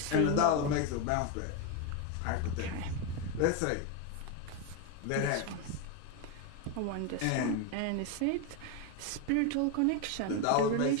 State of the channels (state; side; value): different; both; correlation 0.02